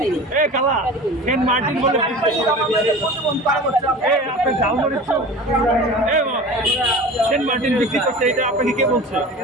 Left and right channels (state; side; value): normal; both; correlation 0.36